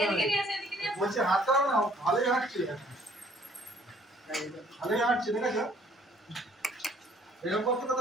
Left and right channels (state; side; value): normal; both; correlation 0.60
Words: বলছে হাঁটতে হবে না, ভালোই হাঁটছে ভালোই হাঁটছে, দেখেছো এরকম করতে